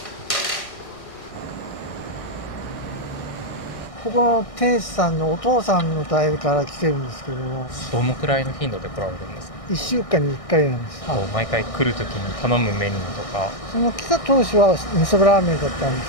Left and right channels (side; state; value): right; late; 1.6 ms